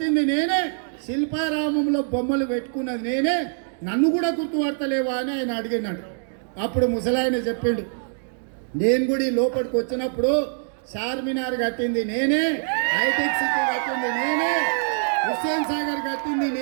నేనే, శిల్పారామంలో బొమ్మలు పెట్టుకున్నది నేనే, నన్ను కూడా గుర్తుపడతలేవా అని ఆయన అడిగినాడు. అప్పుడు ముసలాయన చెప్పిండు, నేను కూడా ఈ లోపలికి వచ్చినప్పుడు చార్మినార్ కట్టింది నేనే, హైటెక్ సిటీ కట్టింది నేనే, హుస్సేన్ సాగర్ కట్టింది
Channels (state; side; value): silent; left; digital silence